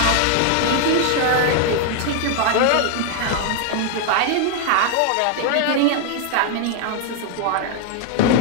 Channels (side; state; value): both; different; correlation 0.00